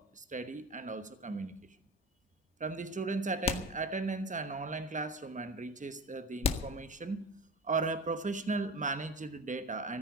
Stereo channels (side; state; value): both; normal; correlation 0.32